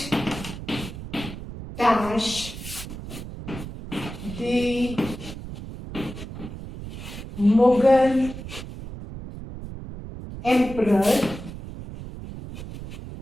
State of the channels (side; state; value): right; noise; rumble, 10 dB below the sound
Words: dash the Mughal emperor